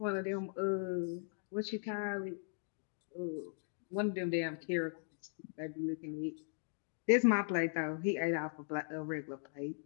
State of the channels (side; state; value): right; silent; digital silence